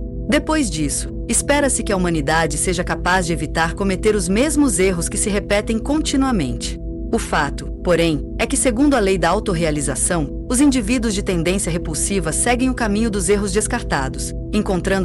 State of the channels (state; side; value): identical; both; correlation 1.00